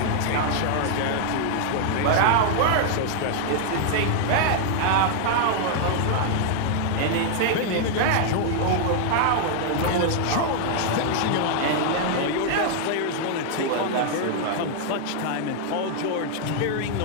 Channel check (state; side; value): different; both; correlation 0.00